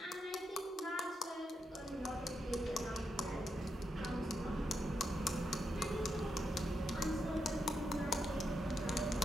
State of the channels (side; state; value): both; normal; correlation 0.83